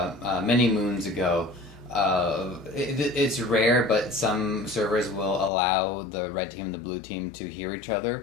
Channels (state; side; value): drops out; right; at 5.5 s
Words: many moons ago. It's rare, but some servers will allow the red team and the blue team to hear each